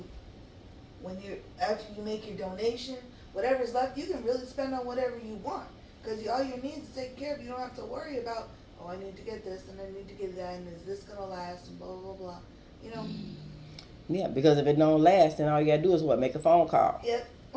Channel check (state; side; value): identical; both; correlation 1.00